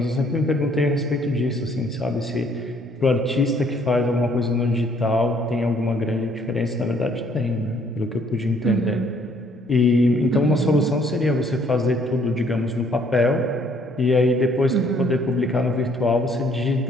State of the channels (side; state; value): both; normal; correlation 0.63